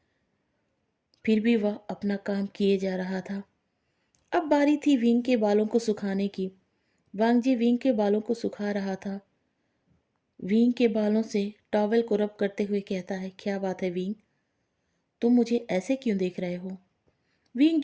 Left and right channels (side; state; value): both; identical; correlation 1.00